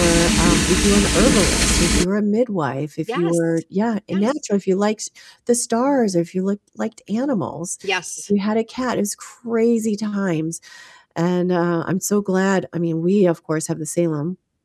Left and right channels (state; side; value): identical; both; correlation 1.00